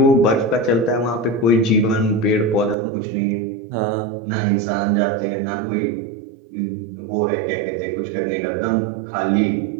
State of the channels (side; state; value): left; drops out; at 2.8 s